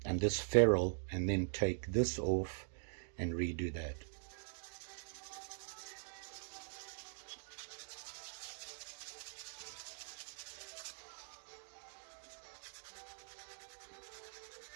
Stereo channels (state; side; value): silent; left; digital silence